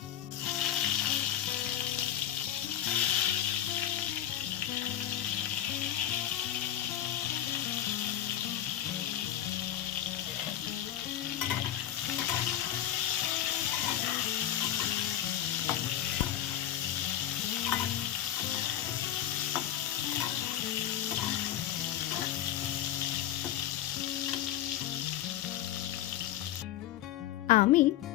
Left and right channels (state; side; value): quieter; right; 11.8 dB